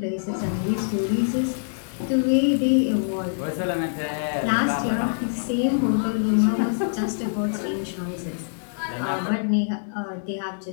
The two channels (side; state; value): right; silent; digital silence